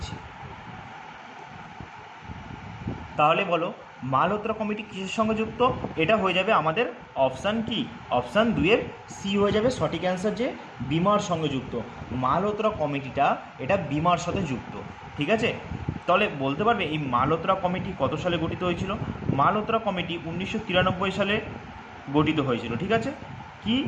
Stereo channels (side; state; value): both; identical; correlation 1.00